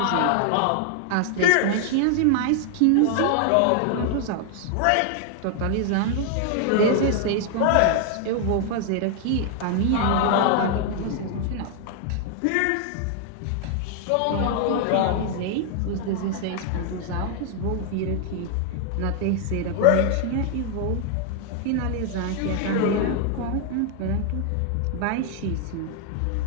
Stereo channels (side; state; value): both; different; correlation 0.00